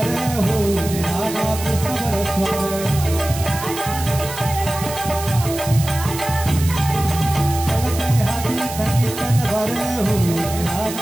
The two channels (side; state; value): right; noise; hiss, 10 dB below the sound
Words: हो निराला कृष्ण बरस्वार, कळते हाती नगी तलवार, हो